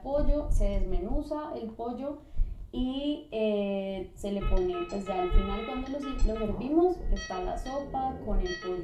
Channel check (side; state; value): both; identical; correlation 1.00